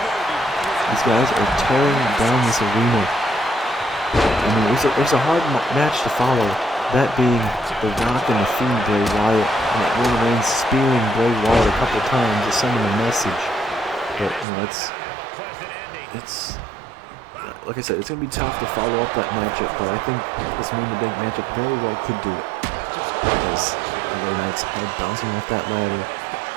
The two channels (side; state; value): left; drops out; at 14.5 s